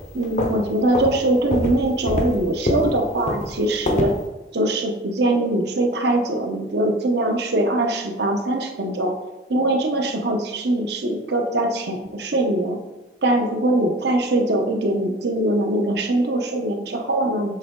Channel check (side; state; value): both; normal; correlation 0.38